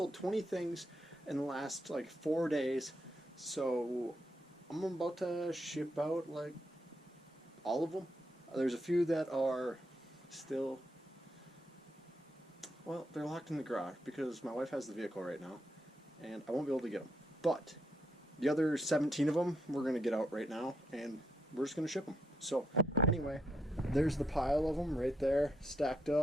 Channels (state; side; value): normal; both; correlation 0.79